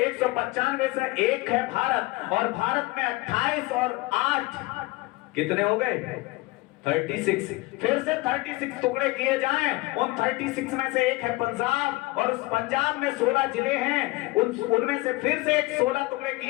से एक है भारत, और भारत में 28 और 8 कितने हो गए? 36। फिर से 36 टुकड़े किए जाएं, उन 36 में से एक है पंजाब, और उस पंजाब में 16 जिले हैं, उनमें से फिर से एक 16 टुकड़े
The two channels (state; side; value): quieter; right; 21.3 dB